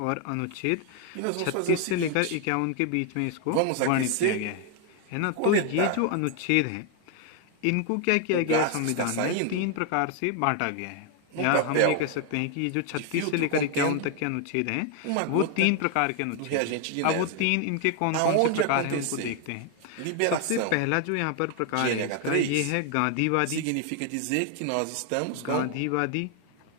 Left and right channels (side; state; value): both; different; correlation 0.00